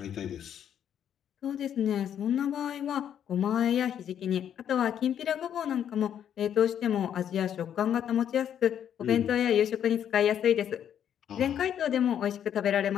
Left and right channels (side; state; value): right; quieter; 9.4 dB